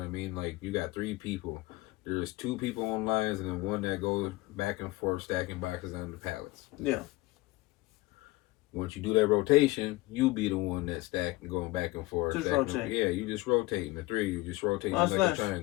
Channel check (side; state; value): right; quieter; 20.3 dB